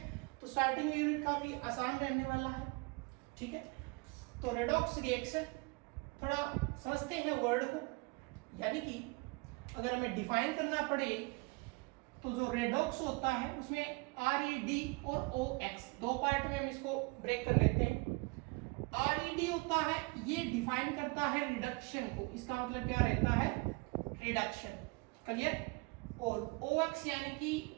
तो स्टार्टिंग में यूनिट काफी आसान रहने वाला है, ठीक है। तो रेडॉक्स रिएक्शन थोड़ा समझते हैं वर्ड को, यानी कि अगर हमें डिफाइन करना पड़े तो जो रेडॉक्स होता है उसमें RED और OX दो पार्ट में हम इसको ब्रेक कर लेते हैं। RED होता है, ये डिफाइन करता है रिडक्शन को, इसका मतलब क्या रहता है, रिडक्शन, क्लियर। और OX यानी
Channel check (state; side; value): quieter; left; 28.0 dB